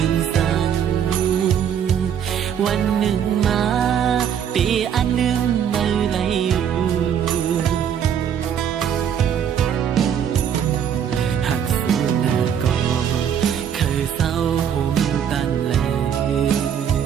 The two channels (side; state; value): left; quieter; 8.6 dB